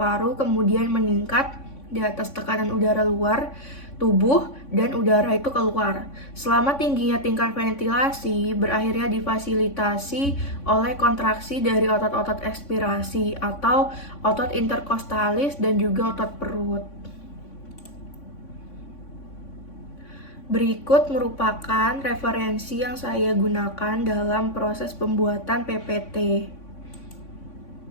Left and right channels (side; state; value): right; late; 3.5 ms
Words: kemudian meningkat di atas tekanan udara luar tubuh dan udara itu keluar. Selama tingginya tingkat ventilasi berakhirnya difasilitasi oleh kontraksi dari otot-otot ekspirasi atau otot interkostalis dan juga otot perut. Berikut merupakan referensi yang saya gunakan dalam proses pembuatan PPT.